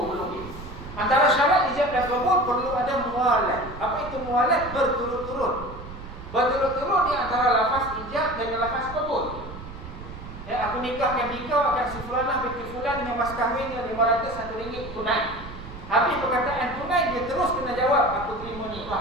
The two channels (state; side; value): noise; right; rumble, 13 dB below the sound